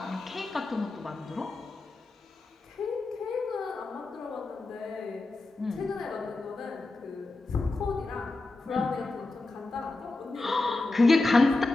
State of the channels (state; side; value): quieter; right; 3.2 dB